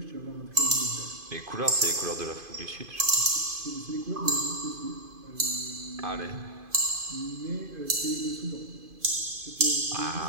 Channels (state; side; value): late; left; 2.5 ms